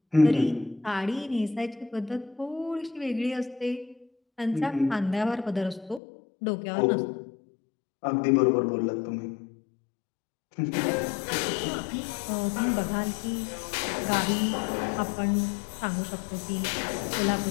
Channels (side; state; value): right; drops out; at 6.0 s